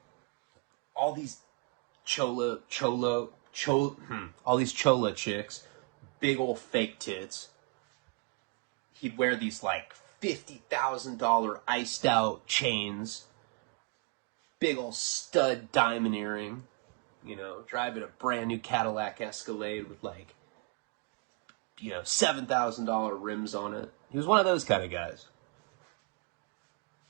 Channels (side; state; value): left; quieter; 31.4 dB